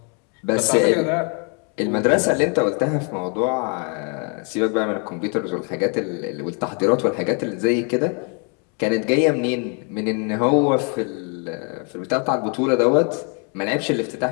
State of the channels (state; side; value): quieter; right; 37.2 dB